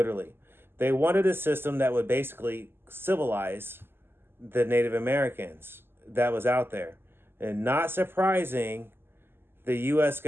They wanted a system that would basically civilize the Native Americans that was out there. And not surprising, the U.S.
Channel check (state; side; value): late; left; 0.11 ms